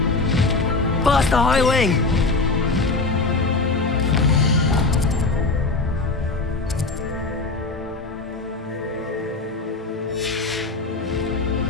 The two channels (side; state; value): right; quieter; 3.6 dB